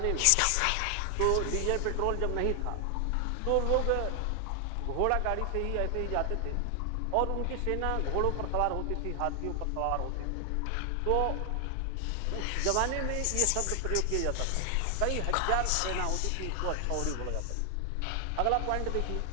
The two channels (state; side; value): different; both; correlation 0.00